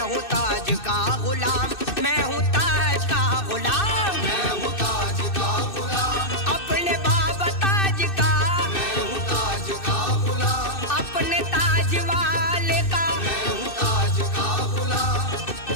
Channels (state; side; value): late; right; 2.6 ms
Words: ताज का गुलाम, मैं हूँ ताज का गुलाम, मैं हूँ ताज का गुलाम, अपने बाबा ताज का, मैं हूँ ताज का गुलाम, अपने ताज वाले का। मैं हूँ ताज का गुलाम,